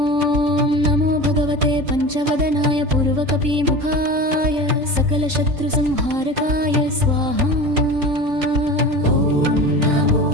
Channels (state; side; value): late; left; 3.6 ms